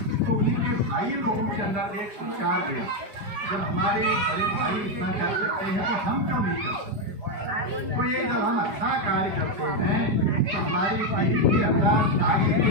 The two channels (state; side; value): late; left; 5.1 ms